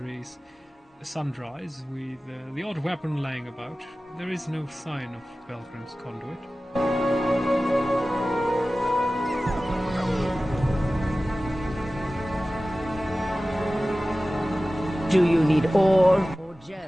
with the odd weapon laying about. There is no sign of Belgrim's conduit. Do you need ore or gems?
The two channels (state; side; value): normal; both; correlation 0.96